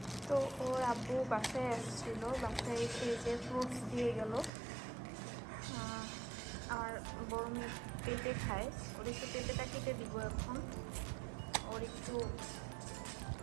তো ওর আব্বু বাসায় আসছিল, বাসায় এসে যে ফ্রুটস দিয়ে গেল। আর বড় মেয়ে পেঁপে খায়, ওর একটু পেঁপেটা কেটে দিব এখন। ওর একটু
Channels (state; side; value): drops out; left; at 4.5 s